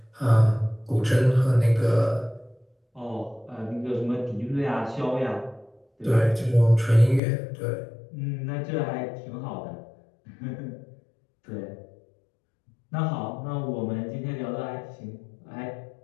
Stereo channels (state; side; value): drops out; right; at 7.2 s